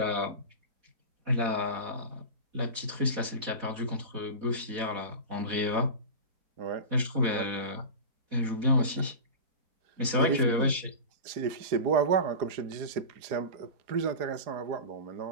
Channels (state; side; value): late; left; 4.1 ms